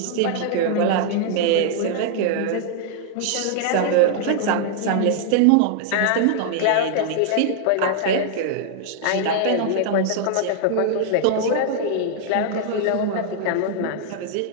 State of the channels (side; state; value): both; different; correlation 0.00